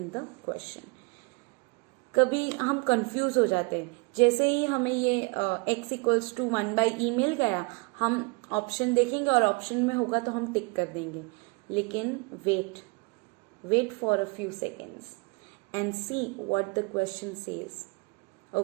the question. कभी हम कंफ्यूज हो जाते हैं. जैसे ही हमें ये x equals to 1 by E मिल गया, हम ऑप्शन देखेंगे और ऑप्शन में होगा तो हम टिक कर देंगे. लेकिन wait for a few seconds and see what the question says.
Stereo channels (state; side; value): quieter; left; 28.9 dB